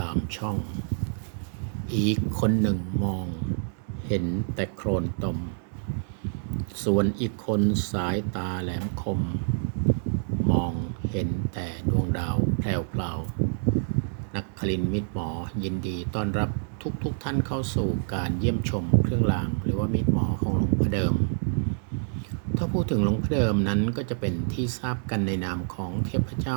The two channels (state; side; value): silent; left; 60 dB below the other